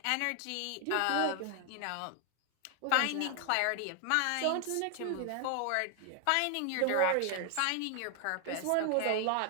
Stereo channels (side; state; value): both; different; correlation 0.00